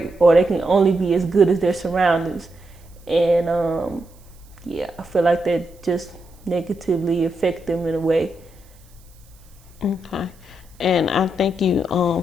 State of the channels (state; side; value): noise; right; hiss, 29 dB below the sound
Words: or they can only be as good as their surroundings. And I feel like that just negatively affect them in a way. Okay. And I think you